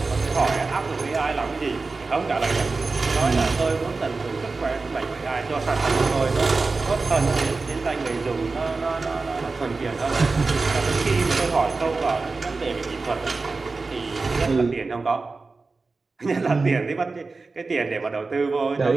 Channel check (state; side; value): quieter; left; 3.9 dB